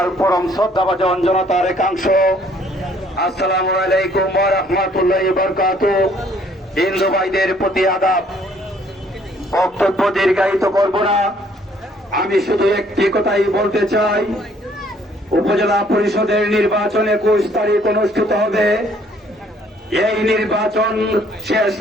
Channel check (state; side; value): normal; both; correlation 0.62